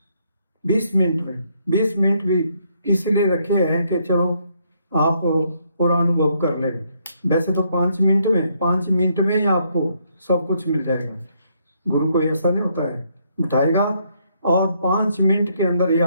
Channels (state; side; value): inverted; both; correlation -0.72